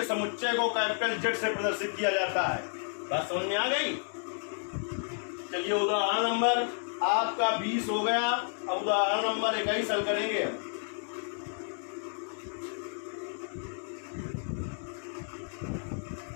समुच्चय को कैपिटल Z से प्रदर्शित किया जाता है। बात समझ में आ गई। चलिए उदाहरण नंबर आपका 20 हो गया। अब उदाहरण नंबर 21 हल करेंगे।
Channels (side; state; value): right; silent; 57 dB below the other